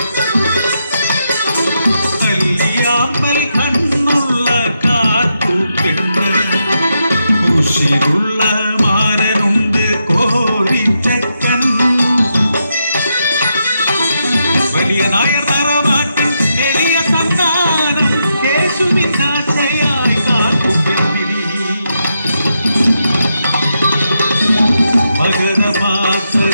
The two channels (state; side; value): inverted; both; correlation -0.83